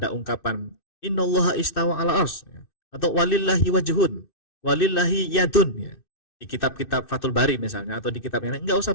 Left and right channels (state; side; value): late; right; 2.6 ms